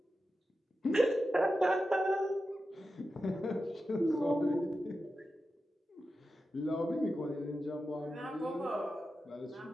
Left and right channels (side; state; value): both; normal; correlation 0.91